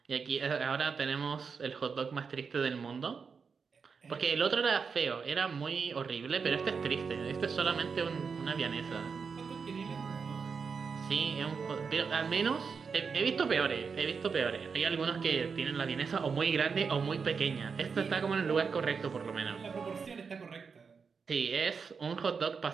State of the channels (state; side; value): quieter; left; 5.6 dB